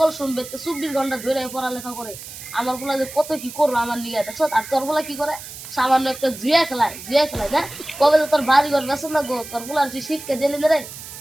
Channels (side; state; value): right; noise; hiss, 13 dB below the sound